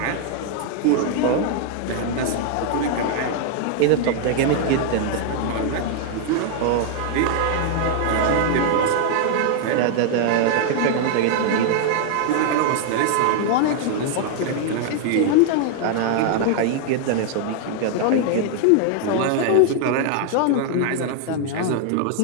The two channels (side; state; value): both; different; correlation 0.00